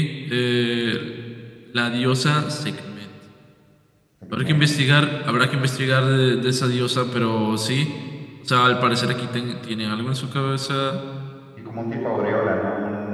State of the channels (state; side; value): identical; both; correlation 1.00